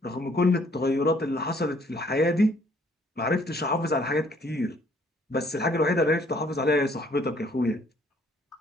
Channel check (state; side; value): normal; both; correlation 0.62